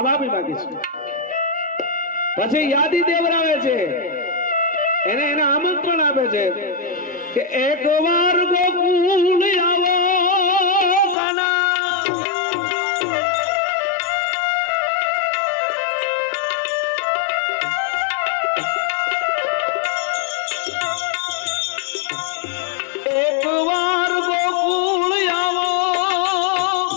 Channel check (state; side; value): drops out; right; at 11.2 s